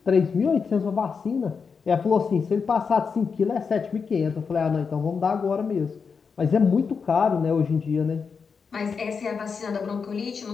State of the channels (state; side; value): quieter; right; 5.6 dB